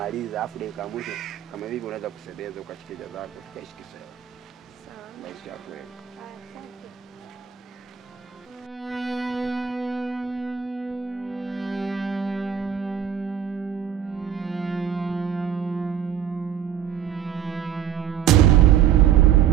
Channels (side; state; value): left; quieter; 9.4 dB